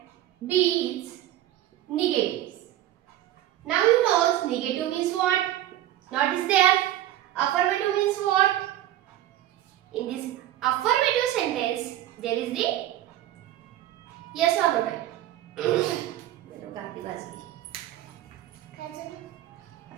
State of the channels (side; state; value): left; quieter; 13.3 dB